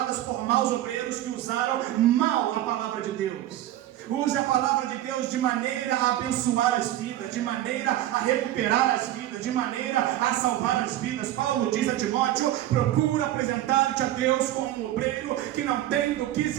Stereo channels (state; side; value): quieter; left; 13.7 dB